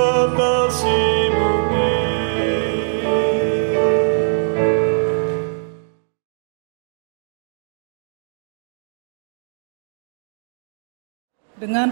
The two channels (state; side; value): silent; left; digital silence